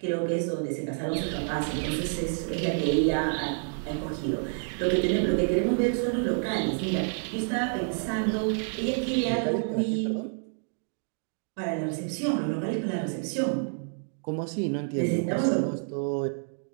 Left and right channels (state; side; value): silent; left; 59 dB below the other